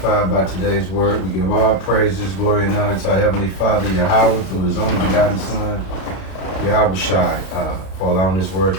by today's word. We give all praises, glory, and honor to our Heavenly Father, Yahweh, through His only begotten Son, Yahweh Shai, for allowing this word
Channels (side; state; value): right; late; 32 ms